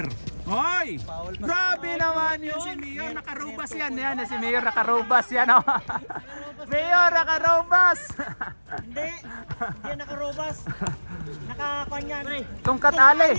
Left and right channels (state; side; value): inverted; both; correlation -1.00